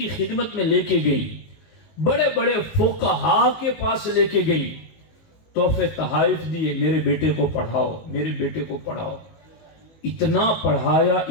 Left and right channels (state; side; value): late; right; 19 ms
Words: خدمت میں لے کے گئی، بڑے بڑے فقہاء کے پاس لے کے گئی، تحفے تحائف دیے، میرے بیٹے کو پڑھاؤ، میرے بیٹے کو پڑھاؤ۔ اتنا پڑھایا،